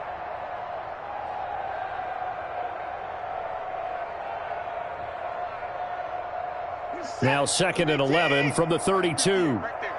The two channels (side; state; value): both; identical; correlation 1.00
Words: Now 2nd and 11 from the 32.